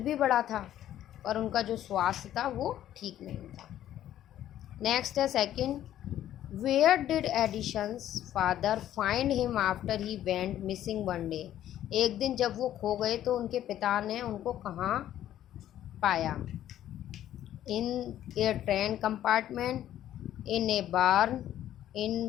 भी बड़ा था, और उनका जो स्वास्थ्य था वो ठीक नहीं था। नेक्स्ट है second, where did Edison's father find him after he went missing one day. एक दिन जब वो खो गए तो उनके पिता ने उनको कहाँ पाया। इन ए ट्रेन कंपार्टमेंट, इन ए बार्न, इन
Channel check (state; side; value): quieter; right; 12.0 dB